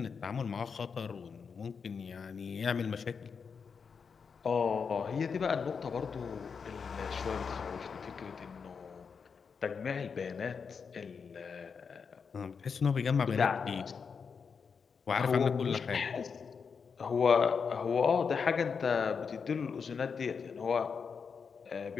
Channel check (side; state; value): right; quieter; 5.9 dB